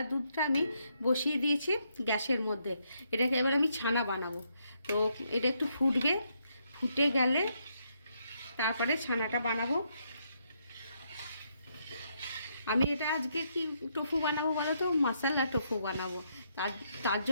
দুধটা আমি বসিয়ে দিয়েছি গ্যাসের মধ্যে। এটাকে এবার আমি ছানা বানাবো। তো এটা একটু ফুটবে, ফুটে গেলে তারপরে ছানাটা বানাবো। আমি এটা আজকে কি টোফু বানাবো বলো তো, মশলা টোফু বানাবো। তার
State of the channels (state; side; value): inverted; both; correlation -0.76